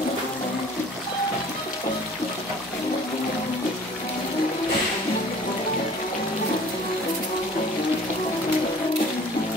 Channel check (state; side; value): normal; both; correlation 0.50